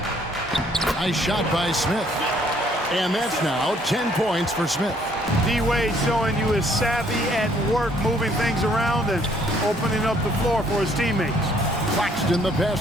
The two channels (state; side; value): normal; both; correlation 0.64